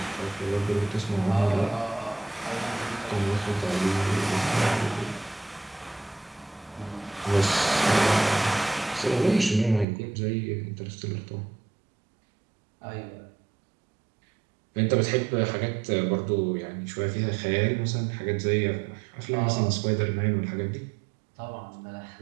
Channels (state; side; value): drops out; left; at 9.9 s